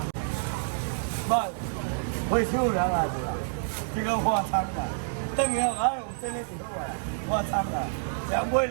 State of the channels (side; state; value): left; silent; digital silence